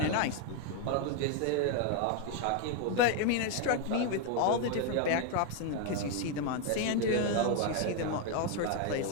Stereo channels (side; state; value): both; different; correlation 0.01